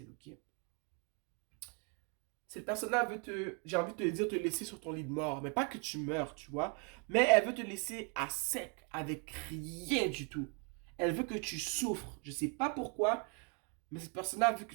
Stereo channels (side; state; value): left; quieter; 37.2 dB